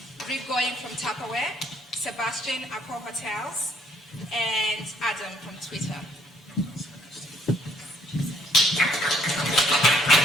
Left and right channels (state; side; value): normal; both; correlation 0.65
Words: Rick Goying from Tupperware, Sebastian Accor Hotels, and Adam from Twitter.